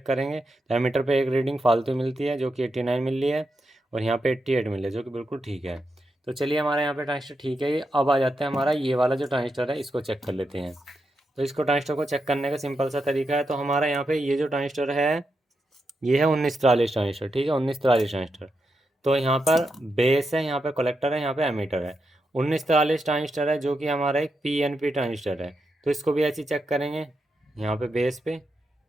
करेंगे। तो एमीटर पे एक रीडिंग फालतू मिलती है जो कि 89 मिल रही है, और यहाँ पे 88 मिल रही है जो कि बिल्कुल ठीक है। तो चलिए हमारे यहाँ पे ट्रांजिस्टर ठीक है। ये अब आ जाते हैं हमारा ये वाला जो ट्रांजिस्टर है, इसको चेक कर लेते हैं। तो इसको ट्रांजिस्टर को चेक करने का सिंपल सा तरीका है। तो हमारा यहाँ पे ये जो ट्रांजिस्टर है ये है 1943 ट्रांजिस्टर, ठीक है, 1943 ट्रांजिस्टर। तो यहाँ पर बेस है, यहाँ पे कलेक्टर है, यहाँ पे एमीटर है। 1943 ट्रांजिस्टर है जो कि हमारा एक PNP ट्रांजिस्टर है। तो इसको भी ऐसे चेक करेंगे, यहाँ पे बेस पे,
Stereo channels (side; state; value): both; normal; correlation 0.85